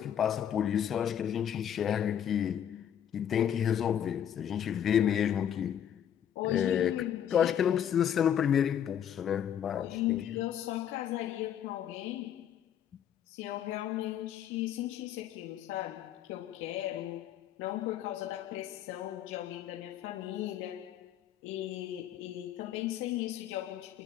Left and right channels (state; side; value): quieter; right; 9.7 dB